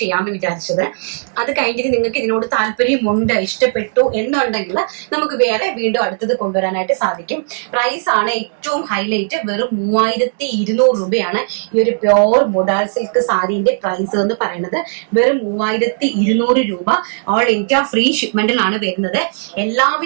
ചെയ്യാമെന്ന് വിചാരിച്ചത്. അത് കഴിഞ്ഞിട്ട് നിങ്ങൾക്ക് ഇതിനോട് താല്പര്യമുണ്ട്, ഇഷ്ടപ്പെട്ടു എന്നുണ്ടെങ്കിൽ നമുക്ക് വേറെ വീണ്ടും അടുത്തത് കൊണ്ടുവരാനായിട്ട് സാധിക്കും. പ്രൈസ് ആണ് ഏറ്റവും ഹൈലൈറ്റ്. വെറും 3200 രൂപയാണ് ഈ ഒരു പ്യോർ മൊഡാൽ സിൽക്ക് സാരിന്റെ പ്രൈസ് എന്ന് പറയുന്നത്. വെറും 3200 രൂപ. ഓൾ ഇന്ത്യ ഫ്രീ ഷിപ്മെന്റിലാണ് വരുന്നത്.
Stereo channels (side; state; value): left; silent; digital silence